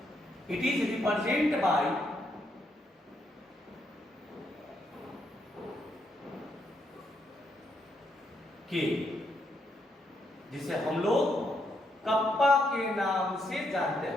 It is represented by K, जिसे हम लोग कप्पा के नाम से जानते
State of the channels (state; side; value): normal; both; correlation 0.77